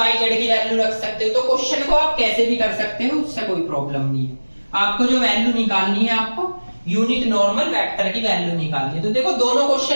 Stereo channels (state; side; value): inverted; both; correlation -1.00